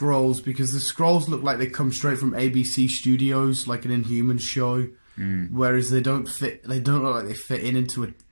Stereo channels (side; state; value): both; inverted; correlation -1.00